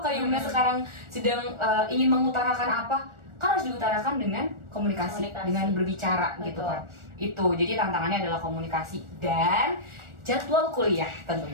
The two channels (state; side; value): late; left; 1.4 ms